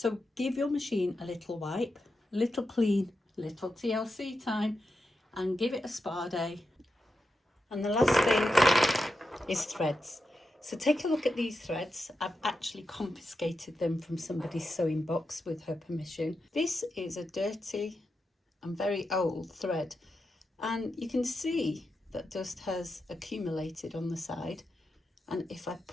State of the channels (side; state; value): both; normal; correlation 0.88